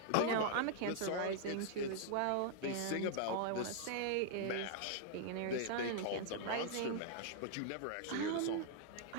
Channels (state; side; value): different; both; correlation -0.01